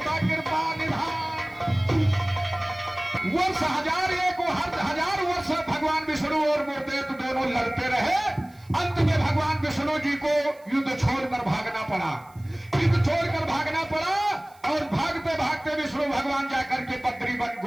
कृपा निधान। वर्ष हजार एक हजार वर्ष भगवान विष्णु और मूर्देव दोनों लड़ते रहे। अंत में भगवान विष्णु जी को युद्ध छोड़कर भागना पड़ा, युद्ध छोड़कर भागना पड़ा। और भागते भागते विष्णु भगवान जाकर के बद्री वन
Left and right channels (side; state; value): right; noise; hiss, 29 dB below the sound